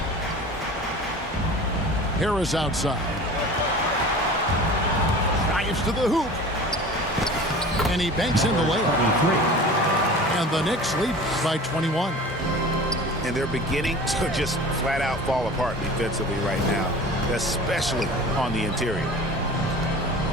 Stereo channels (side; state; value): both; normal; correlation 0.39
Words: Harris outside. Drives to the hoop. And he banks in the layup. And the Knicks lead by 21. And they're beginning to just flat out fall apart defensively right now, especially on the interior.